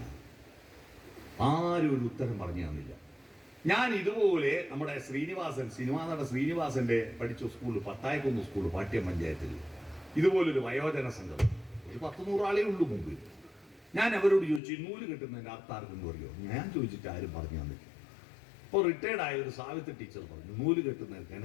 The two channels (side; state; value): right; drops out; at 14.6 s